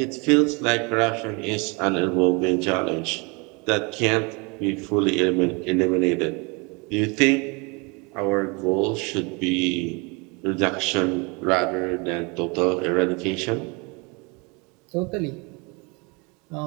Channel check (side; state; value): left; quieter; 29.6 dB